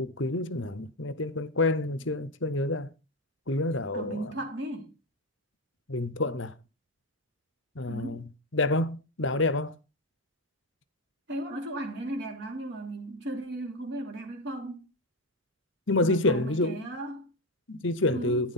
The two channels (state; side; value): normal; both; correlation 0.12